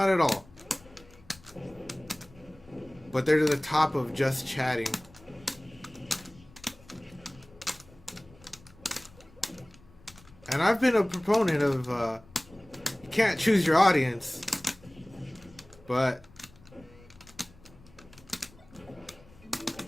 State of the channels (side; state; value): left; noise; rumble, 24 dB below the sound